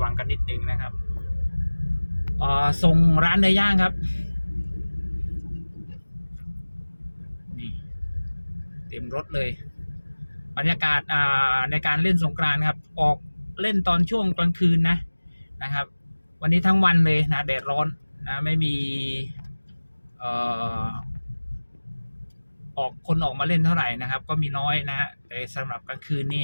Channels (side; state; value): both; inverted; correlation -1.00